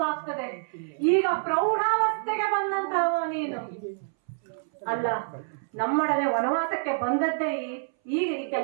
ಈಗ ಪ್ರೌಢಾವಸ್ಥೆಗೆ ಬಂದಂತಹ ನೀನು ಅಲ್ಲ, ನಮ್ಮೊಡನೆ ವನವಾಸಕ್ಕೆ ಬಂದದ್ದೇ ಈಗ ಈ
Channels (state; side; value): silent; left; 60 dB below the other